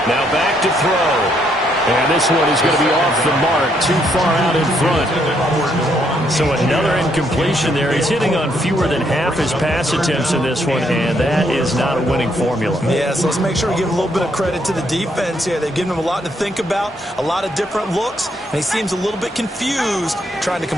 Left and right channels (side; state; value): both; normal; correlation 0.73